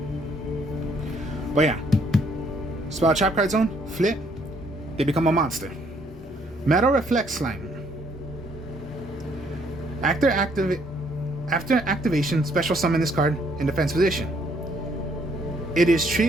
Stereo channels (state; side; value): normal; both; correlation 0.67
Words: But yeah, spell trap card zone, flip, they become a monster. Metal Reflect Slime. After activation, special summon this card in defense position. It is